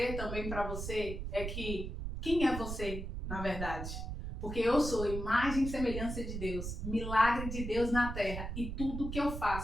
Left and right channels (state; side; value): noise; right; rumble, 5 dB below the sound